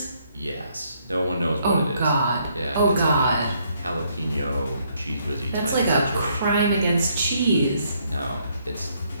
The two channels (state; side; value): inverted; both; correlation -0.70